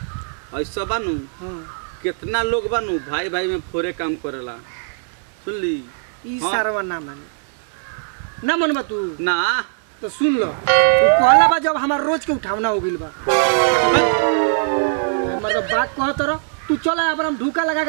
ऐसा बानू हां कितना लोग बानू भाई भाई में फोरे काम करेला सुन ली ई हाँ। सारवा ना माने ना मनबा तू ना तो सुन लो वो कहला बा जब हमार रोज के उठावना हो गइल बा हमार तो बात कहत रह तू चल अब हम ढूका लगा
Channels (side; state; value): left; silent; digital silence